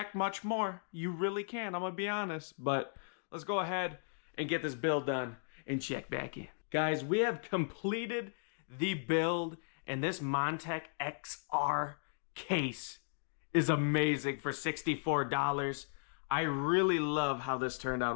much more. You really can, I'm gonna be honest. But let's go ahead and get this build done and check back in. Guys, we have completed the build, and this Montech XR case is amazing for $64. I really love how this turned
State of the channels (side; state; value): right; silent; digital silence